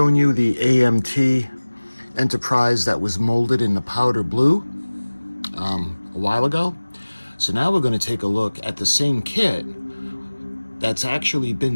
you the AMT Enterprise that was molded in the powder blue a while ago. So now we're going to take a look at the same kit that's actually been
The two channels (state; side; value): inverted; both; correlation -1.00